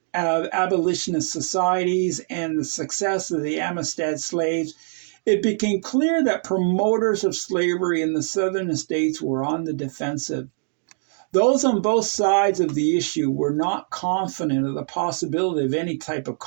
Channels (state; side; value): silent; left; digital silence